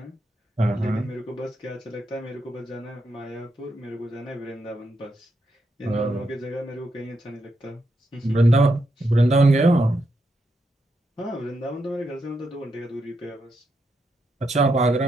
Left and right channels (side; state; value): both; normal; correlation 0.82